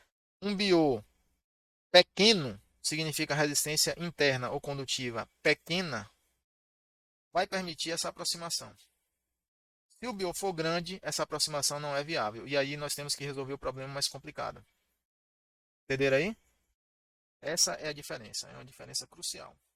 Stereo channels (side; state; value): both; identical; correlation 1.00